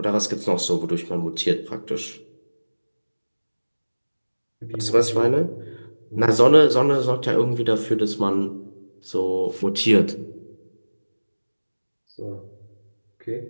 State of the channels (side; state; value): both; inverted; correlation -1.00